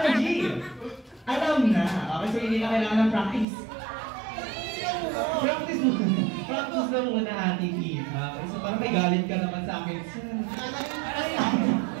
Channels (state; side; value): drops out; left; at 3.5 s